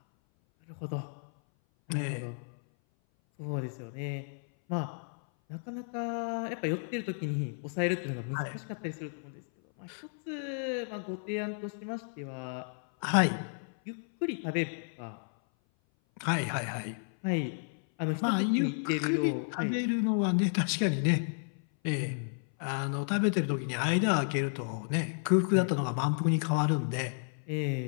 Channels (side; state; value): right; silent; 56 dB below the other